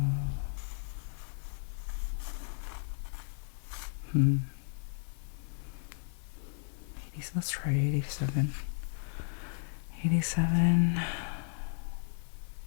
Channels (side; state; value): right; silent; 55 dB below the other